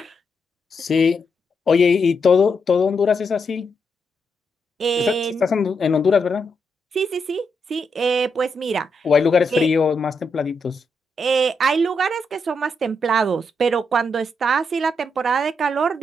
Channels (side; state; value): both; normal; correlation 0.81